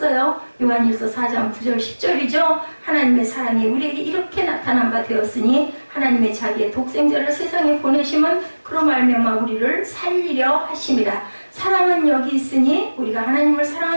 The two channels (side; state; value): both; inverted; correlation -1.00